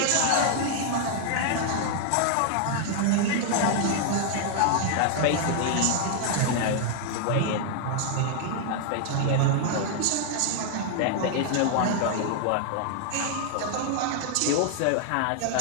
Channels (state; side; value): different; both; correlation 0.00